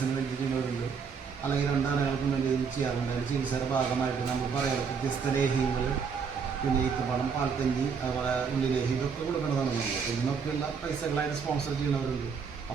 വേണ്ടി ചെയ്യുന്നവരുണ്ട്, അല്ലെങ്കിൽ 2 ആനകൾക്കും വേണ്ടി ചെയ്യാറുണ്ട്. അതിന് ചികിത്സയുടെ ഭാഗമായിട്ട് നമ്മൾ പറയാറ് വ്യത്യസ്ത ലേഹ്യങ്ങൾ, പിന്നെ ഈത്തപ്പഴം, പാൽക്കഞ്ഞി, അതുപോലെ ഉള്ളിലേഹ്യം ഇതൊക്കെ കൊടുക്കേണ്ടതാണ് നമ്മൾ. ഇതിനൊക്കെയുള്ള പൈസകളായിട്ട് സ്പോൺസർ ചെയ്യുന്നവരുണ്ട്.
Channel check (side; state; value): left; quieter; 6.0 dB